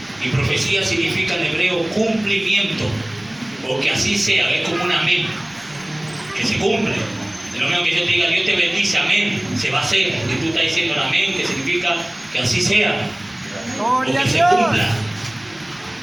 Y profecía significa en hebreo cumplimiento, o que así sea, es como un amén, que se cumple. Es lo mismo que yo te diga, Dios te bendice, amén, se va a hacer. Y tú estás diciendo el amén, que significa que así sea, o que se cumpla.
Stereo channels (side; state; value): left; noise; rumble, 30 dB below the sound